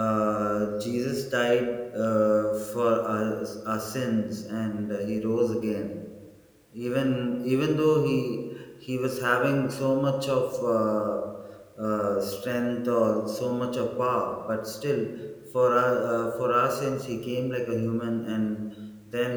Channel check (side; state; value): both; identical; correlation 1.00